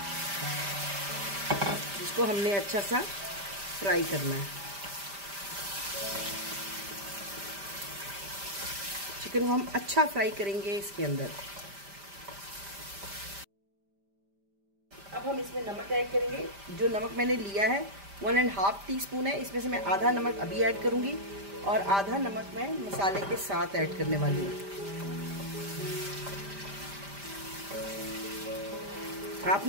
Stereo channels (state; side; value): late; left; 5.0 ms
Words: जिसको हमने अच्छा सा फ्राई करना है। चिकन को हम अच्छा फ्राई करेंगे इसके अंदर। अब हम इसमें नमक ऐड करेंगे। जो नमक मैंने लिया है 1.5 टीस्पून है, इसमें से मैं आधा नमक अभी ऐड करूंगी और आधा नमक मैं मसाले के साथ ऐड करने वाली हूँ।